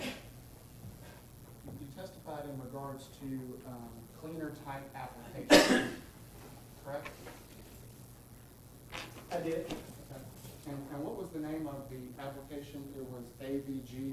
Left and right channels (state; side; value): identical; both; correlation 1.00